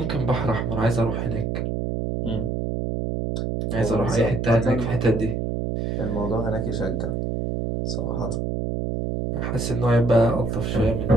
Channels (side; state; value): right; noise; hum, 1 dB below the sound